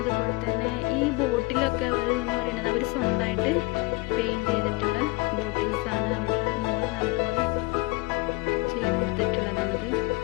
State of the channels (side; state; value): right; quieter; 23.6 dB